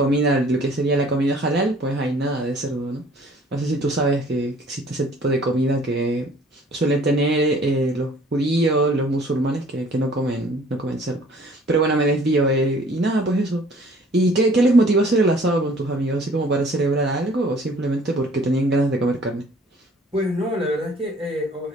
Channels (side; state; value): both; normal; correlation 0.54